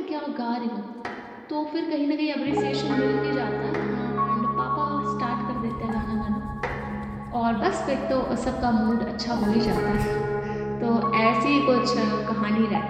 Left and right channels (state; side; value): identical; both; correlation 1.00